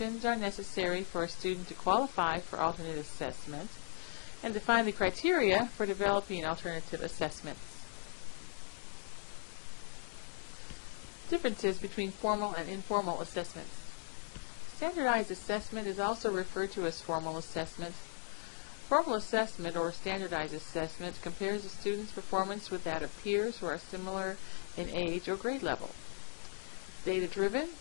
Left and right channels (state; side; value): silent; right; digital silence